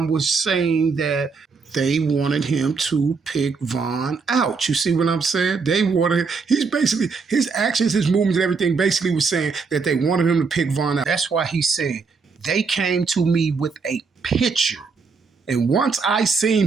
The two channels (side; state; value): left; quieter; 4.9 dB